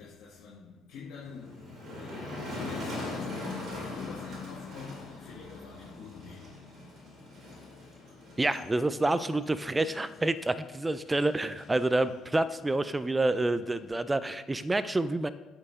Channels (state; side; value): normal; both; correlation 0.92